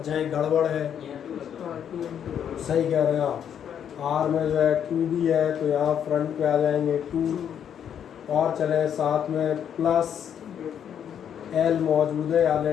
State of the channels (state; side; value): quieter; right; 8.9 dB